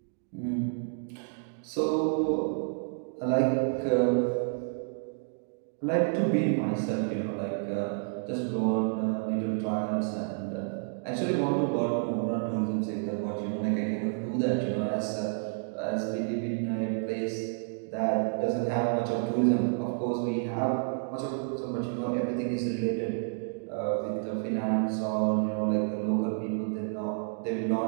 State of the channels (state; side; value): silent; left; digital silence